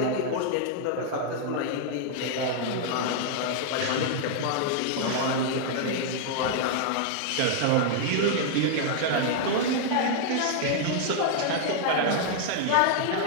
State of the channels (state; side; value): different; both; correlation -0.01